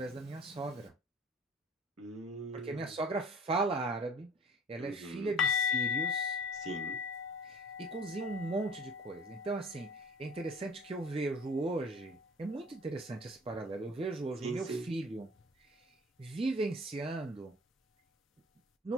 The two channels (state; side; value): normal; both; correlation 0.46